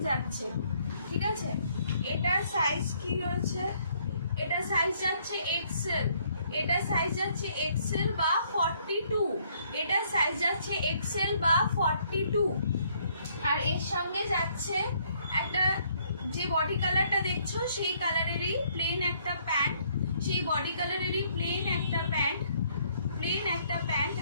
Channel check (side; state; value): both; inverted; correlation -0.66